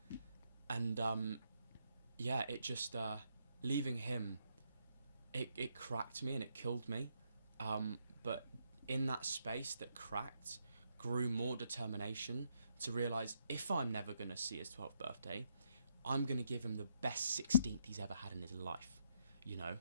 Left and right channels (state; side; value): inverted; both; correlation -0.77